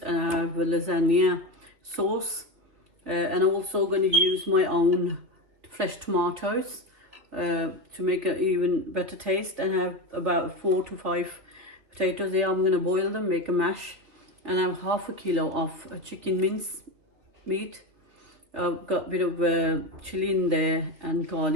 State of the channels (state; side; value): late; left; 2.6 ms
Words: and I have a lasagna sauce, and I'm also going to use my own fresh tomatoes to make an even better taste. And I have about 4 to 5 potatoes here. I'm going to boil them, make a mash, and I have half a kilo of chicken mince meat. I've got a bit of chili in there and